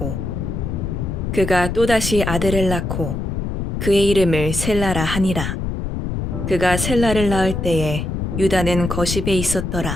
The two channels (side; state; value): left; noise; rumble, 3 dB below the sound